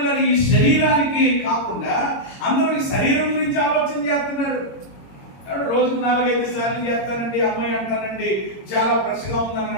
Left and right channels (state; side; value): late; right; 22 ms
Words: ఈ శరీరానికి కాకుండా అందరూ ఈ శరీరం గురించి ఆలోచన చేస్తున్నారు. రోజుకు 4-5 సార్లు చేస్తానండి, అమ్మాయి అంటానండి, చాలా ఫ్రెష్గా ఉందని